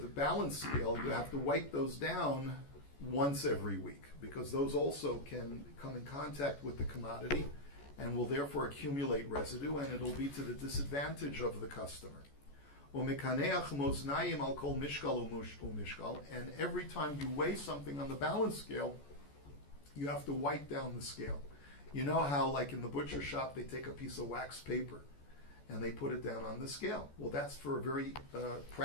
balance scale, you have to wipe those down once every week because those also can come in contact with the commodity and will therefore accumulate residue, and it'll be to the disadvantage of the customer. And every time you weigh something on the balance scale, you have to wipe down the scale. You know how, like in the butcher shop, they take a piece of wax paper and they put it down on the scale. Well, that's for a very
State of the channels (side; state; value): right; late; 14 ms